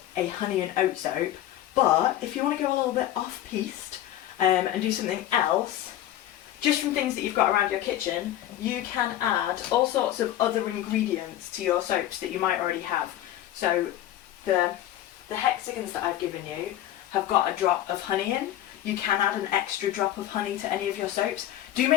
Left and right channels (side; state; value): right; quieter; 12.9 dB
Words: a honey and oat soap, but if you want to go a little bit off-piste and do something else, just from things that you've got around your kitchen, you can add all sorts of other ingredients to your soaps that you might already have. So the hexagons that I've given you have got a drop of honey in. You can add an extra drop of honey to any of your soaps. Do